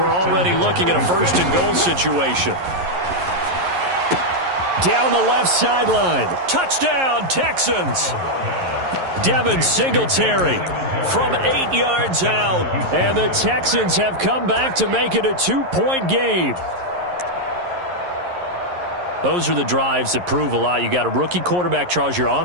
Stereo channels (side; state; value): left; late; 11 ms